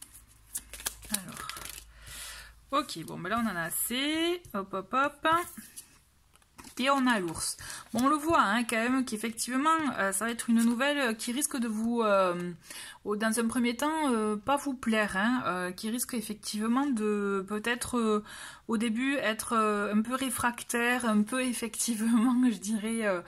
alors, ok, bon, ben là on en a assez, hop, hop, hop, et on a l'ours. Bon, on le voit, hein, quand même, qu'effectivement, ça va être une nouvelle qui risque de vous, dans un premier temps, pas vous plaire, hein, qui risque effectivement de, peut-être, au début, être un peu réfractaire, un peu, effectivement, je dirais,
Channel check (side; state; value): both; identical; correlation 1.00